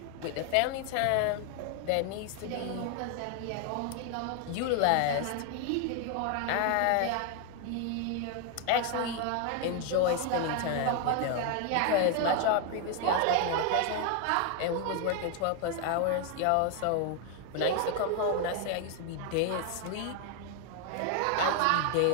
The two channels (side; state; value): both; different; correlation 0.00